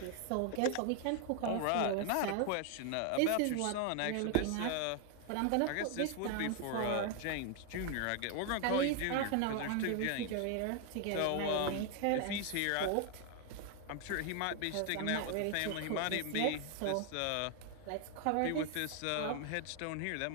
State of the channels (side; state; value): both; different; correlation 0.00